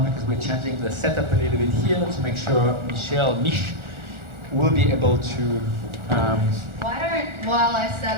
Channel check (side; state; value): left; late; 1.4 ms